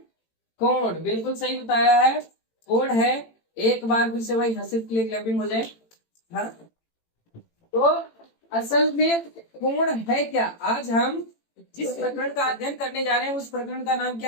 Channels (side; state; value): right; late; 18 ms